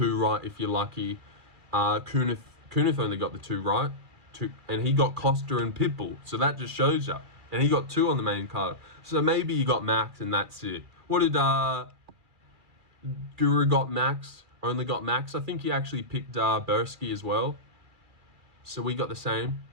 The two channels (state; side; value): late; left; 2.3 ms